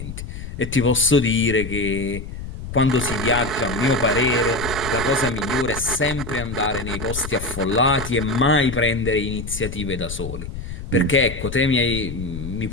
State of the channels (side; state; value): left; noise; rumble, 9 dB below the sound